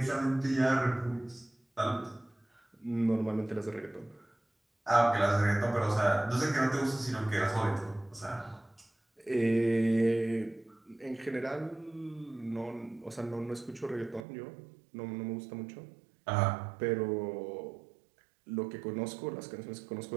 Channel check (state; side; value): drops out; left; at 14.2 s